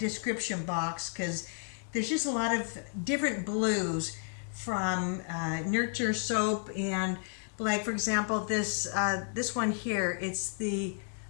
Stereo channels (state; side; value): silent; right; 56 dB below the other